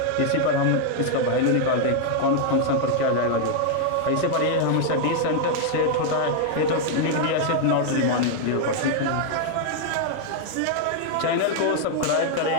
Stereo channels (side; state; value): both; different; correlation 0.00